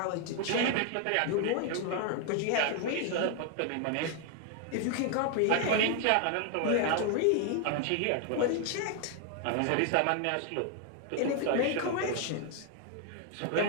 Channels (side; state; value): both; different; correlation 0.00